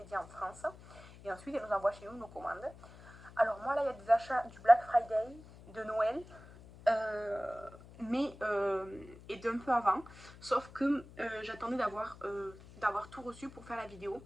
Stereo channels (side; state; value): left; noise; hum, 19 dB below the sound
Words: en France. Et ensuite elle nous envoie chez nous nos commandes. Alors moi là il y a des achats du Black Friday, de Noël, mais et d'un peu avant, sauf que j'attendais d'avoir tout reçu pour faire la vidéo,